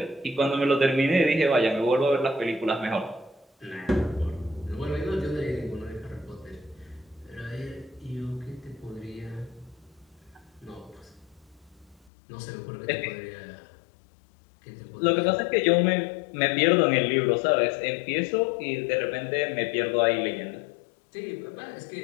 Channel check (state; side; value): drops out; right; at 12.1 s